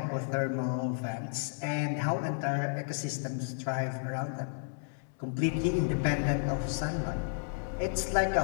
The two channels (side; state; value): right; silent; digital silence